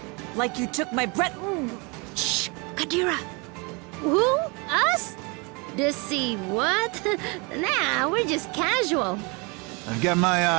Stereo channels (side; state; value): left; quieter; 29.6 dB